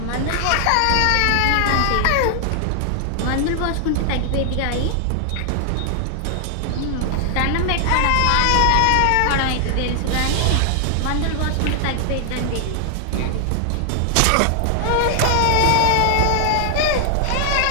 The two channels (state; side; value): different; both; correlation 0.00